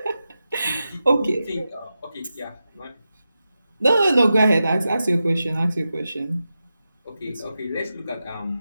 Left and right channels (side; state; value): both; inverted; correlation -0.91